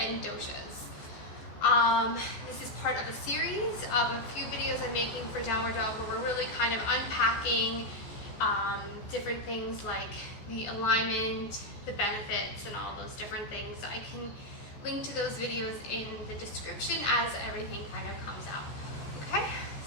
doshas. This is part of a series of a few videos I'm making for Downward Dog where we're really kind of unpacking different things like the alignment, the benefits, and all those different things. So I can link to those videos in the description as everything kind of comes out. Okay,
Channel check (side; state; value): right; late; 14 ms